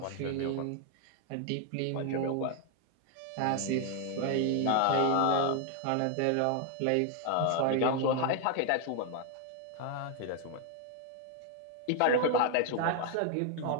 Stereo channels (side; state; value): both; different; correlation 0.00